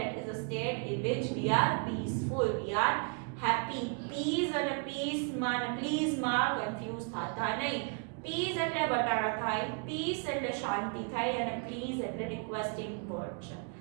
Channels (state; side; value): quieter; left; 39.1 dB